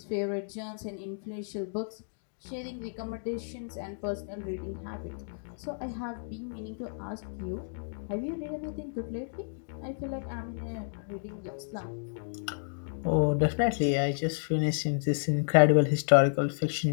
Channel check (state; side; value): silent; right; digital silence